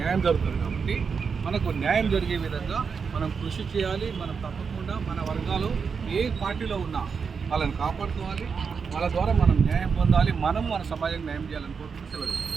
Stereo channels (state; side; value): quieter; left; 5.8 dB